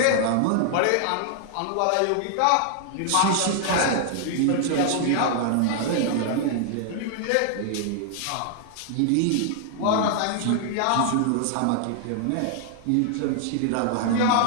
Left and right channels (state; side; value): different; both; correlation -0.01